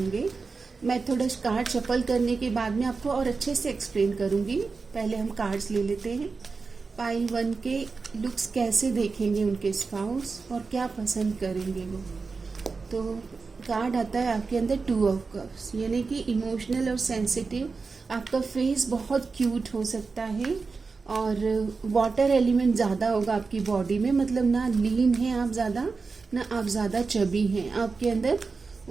मैं थोड़ा कार्ड शफल करने के बाद में आपको और अच्छे से एक्सप्लेन करूंगी। पहले हम कार्ड्स ले लेते हैं। पाइल 1 के लुक्स कैसे देखेंगे उनके स्पाउस और क्या पसंद करेंगे वो। तो कार्ड आता है आपके अंदर 2 ऑफ कप्स, यानी कि इमोशनल और सेंसिटिव। आपका फेस बहुत क्यूट हो सकता है और वाटर एलिमेंट ज़्यादा होगा आपकी बॉडी में। मतलब ना लीन है आप ज़्यादा, ना आप ज़्यादा चबी हैं। आपके अंदर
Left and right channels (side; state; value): left; quieter; 4.5 dB